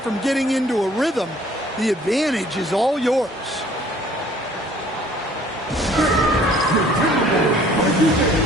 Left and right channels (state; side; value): normal; both; correlation 0.56